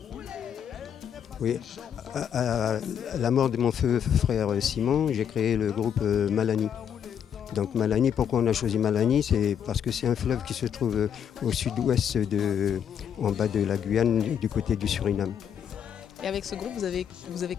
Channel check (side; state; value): right; quieter; 8.5 dB